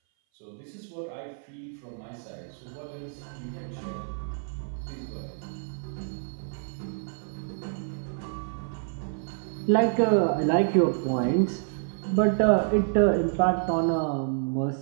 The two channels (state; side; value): silent; left; 58 dB below the other